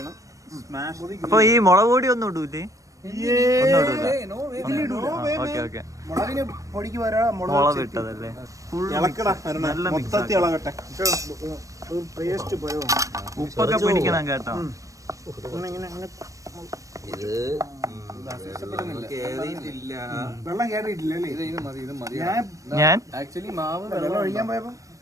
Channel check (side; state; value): left; late; 0.16 ms